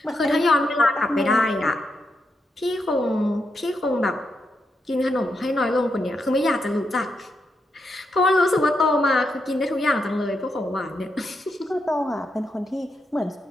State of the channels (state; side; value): normal; both; correlation 0.83